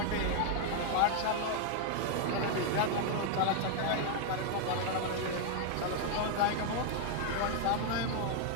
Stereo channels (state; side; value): different; both; correlation 0.00